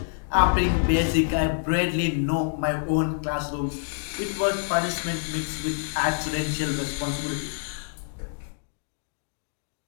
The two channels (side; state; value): right; silent; digital silence